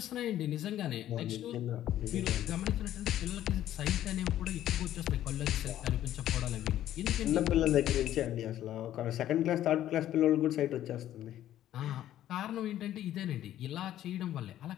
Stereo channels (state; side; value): quieter; right; 12.3 dB